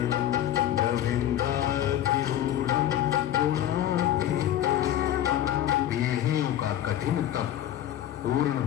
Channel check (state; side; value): quieter; right; 12.0 dB